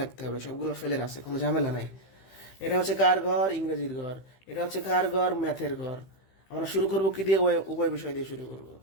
হবে। সবগুলো ফেলের আছে, কোনো ঝামেলা নাই। এটা হচ্ছে কার ঘর? ইংরেজির ঘর। এটা হচ্ছে কার ঘর? ম্যাথের ঘর। আমরা শুরু করবো কি দিয়ে? উভয় বিষয় দিয়ে শুরু করবো।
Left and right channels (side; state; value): right; late; 15 ms